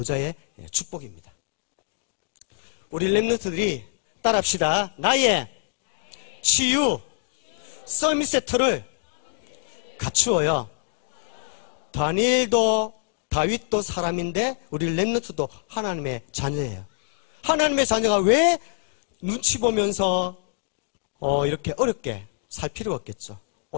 축복입니다. 우리 렘넌트들이 따라합시다. 나의 치유 서밋 세트를 갖추어요. 다윗도 사람인데 우리 렘넌트도 하나님의 자녀예요. 하나님의 자녀가 왜 눈치 보면서 이렇게 어렵게 살 필요가 없겠죠.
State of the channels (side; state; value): right; silent; digital silence